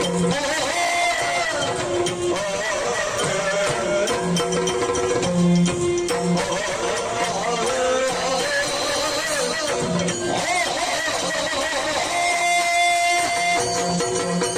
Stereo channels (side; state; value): both; identical; correlation 1.00